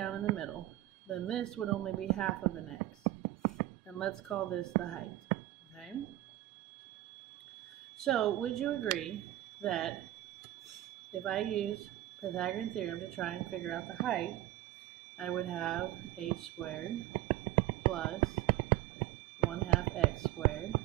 in the middle, then this would only be half of an x. And let's call this the height, okay? So, would you agree that if I use Pythagorean Theorem to try and figure out the height, I would have h squared plus 1/2 x squared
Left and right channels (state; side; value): quieter; left; 15.2 dB